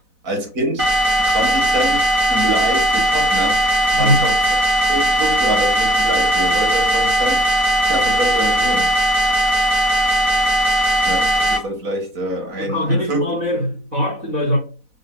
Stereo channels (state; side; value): late; left; 4.0 ms